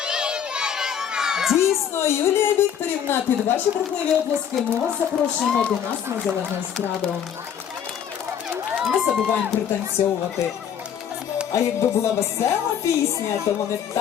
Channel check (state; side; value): quieter; right; 8.7 dB